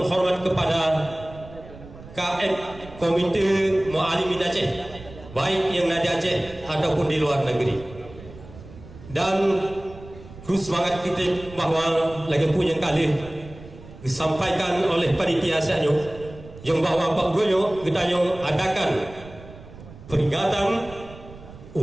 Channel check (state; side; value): noise; right; rumble, 18 dB below the sound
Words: kepada KM Komite Mu'alimin Aceh, baik yang ada Aceh ataupun di luar negeri. Dan terus semangat kita bahawa lagi punya kali disampaikan oleh panitia asalnya yang bahawa Pak Uroyo kita yang adakan peringatan